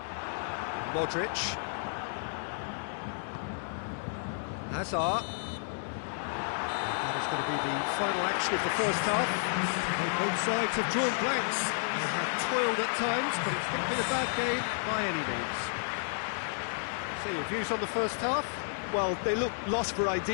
Modric. Hazard. That is going to be the final action of the first half. Both sides have drawn blanks. They have toiled at times, but it's not been a bad game by any means. So your views on the first half? Well, they look lost for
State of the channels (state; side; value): silent; right; digital silence